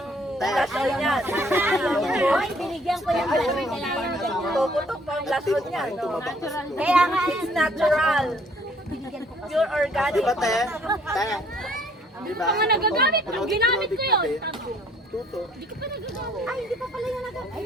blushon niya. Hoy, binigyan ko yung balaman. Kaya yan ganyan. Tututok pa ang blushon niya, no? Kaya nga, It's natural. binigyan ko kasi. Pure organic. di ba, te? Te? Di ba? Mga nagagamit, ang ginamit ko yun. Tuto. Ay, hindi pa pala yung nagag... Ay,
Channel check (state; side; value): normal; both; correlation 0.61